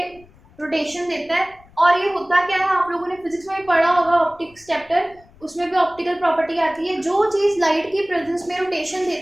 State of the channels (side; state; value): left; noise; rumble, 27 dB below the sound